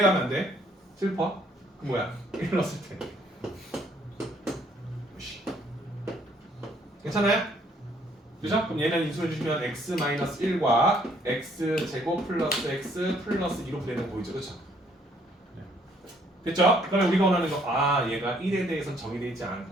가면 안 돼? 슬퍼? 그 뭐야? 1 넣었을 때. 괜찮아요? 그죠? 그럼 얘는 인수해 주시면 x-1과 x제곱 플러스 x 플러스 2로 분해되는 거 보이죠? 그렇죠? 됐죠? 그러면 우리가 원하는 거, 아 얘가 1에 대해서는 정의되어 있지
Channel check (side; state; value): both; normal; correlation 0.65